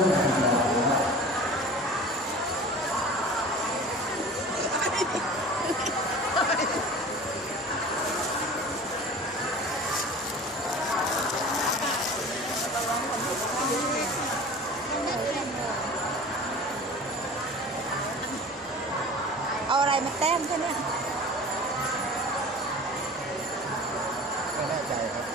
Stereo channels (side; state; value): both; normal; correlation 0.39